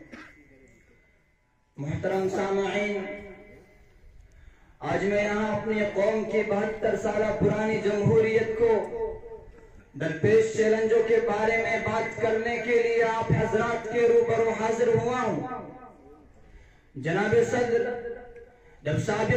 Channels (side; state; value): both; identical; correlation 1.00